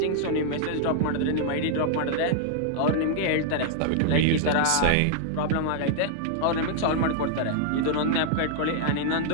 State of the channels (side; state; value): both; different; correlation -0.01